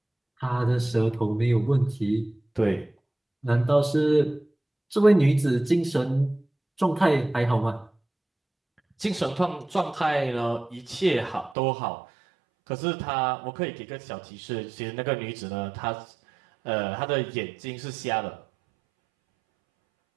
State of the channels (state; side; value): drops out; left; at 11.6 s